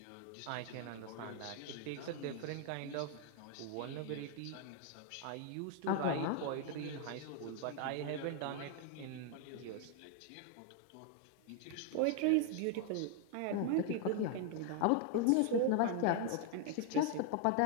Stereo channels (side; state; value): both; different; correlation 0.00